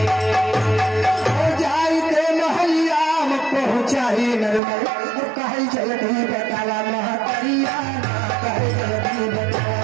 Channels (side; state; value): left; drops out; at 4.6 s